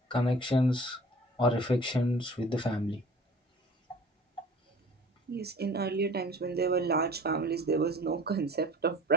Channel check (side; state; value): both; normal; correlation 0.46